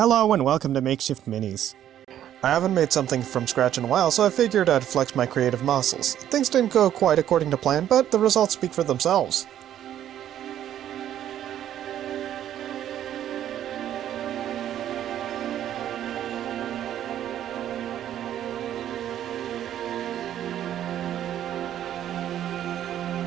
and welcome to Makeshift Minis. I haven't made something from scratch in a while, so I figured I'd flex my creative muscles. Things didn't go quite according to plan, but the results speak for themselves.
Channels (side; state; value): left; quieter; 11.1 dB